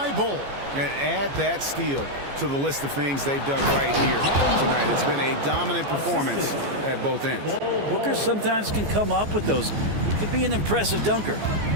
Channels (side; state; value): left; late; 14 ms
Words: Bull. And add that steal to the list of things they've done right here tonight. It's been a dominant performance at both ends. Booker sometimes can come up with those. He can be an impressive dunker.